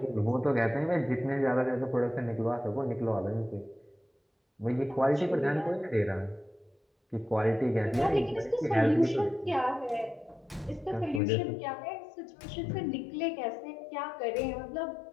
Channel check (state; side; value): drops out; right; at 11.2 s